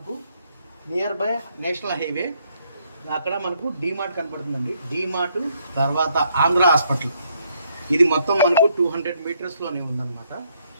నియర్ బై నేషనల్ హైవే, అక్కడ మనకు డీమార్ట్ కనపడుతుందండి. డీమార్ట్ తర్వాత ఆంధ్ర హాస్పిటల్, ఇది మొత్తం మనకు 200 మీటర్స్లోనే ఉందన్నమాట.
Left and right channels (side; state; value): both; inverted; correlation -0.72